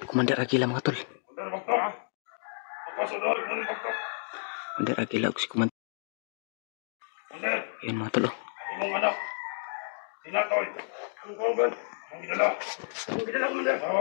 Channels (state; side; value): silent; right; digital silence